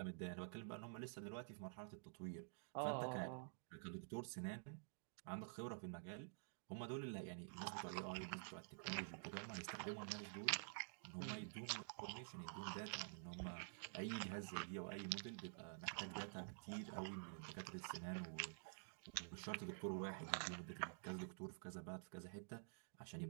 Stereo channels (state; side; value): silent; left; digital silence